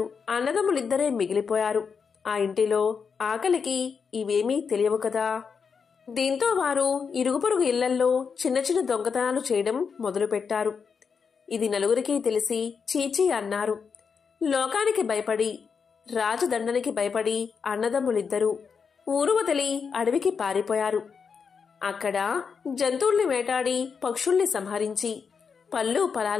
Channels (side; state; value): right; quieter; 5.9 dB